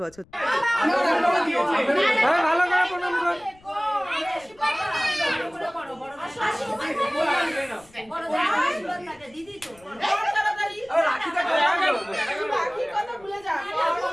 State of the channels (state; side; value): noise; left; rumble, 28 dB below the sound